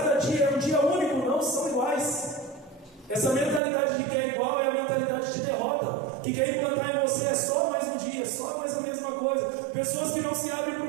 dia é um dia único, não são iguais. Essa mentalidade de que é igual é a mentalidade de derrota. Que quer implantar em você é só mais um dia, só mais a mesma coisa. Pessoas que não se abrem para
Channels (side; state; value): left; drops out; at 3.6 s